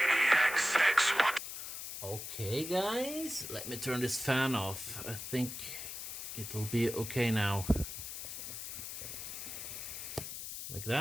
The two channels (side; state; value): left; noise; hiss, 7 dB below the sound